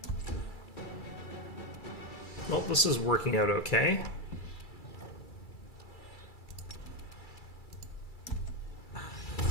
Well, this is working out okay.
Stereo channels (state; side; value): late; right; 2.3 ms